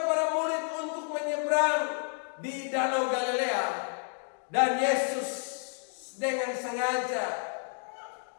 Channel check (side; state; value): right; silent; 57 dB below the other